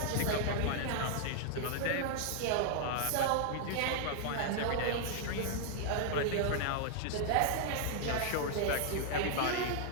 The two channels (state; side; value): different; both; correlation 0.00